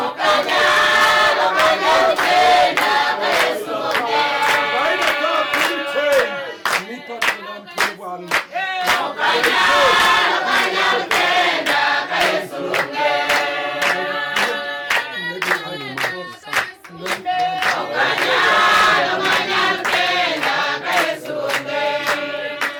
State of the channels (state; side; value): identical; both; correlation 1.00